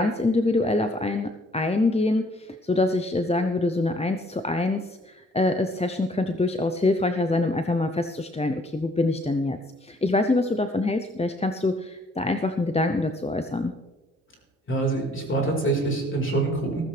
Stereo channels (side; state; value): both; normal; correlation 0.61